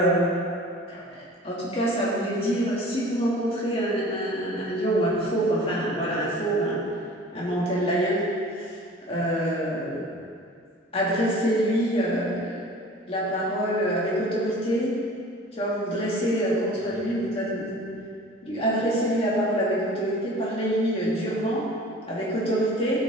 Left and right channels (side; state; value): both; normal; correlation 0.44